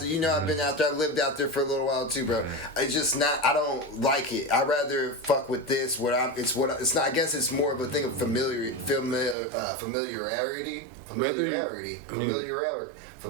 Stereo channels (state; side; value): drops out; left; at 9.3 s